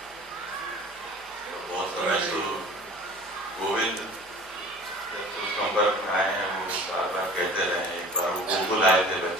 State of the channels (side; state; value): both; normal; correlation 0.43